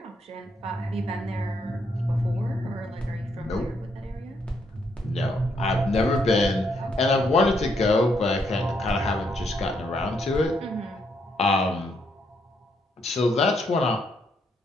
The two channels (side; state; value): both; normal; correlation 0.75